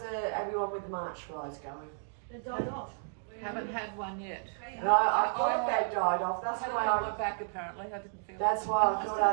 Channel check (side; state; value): left; silent; digital silence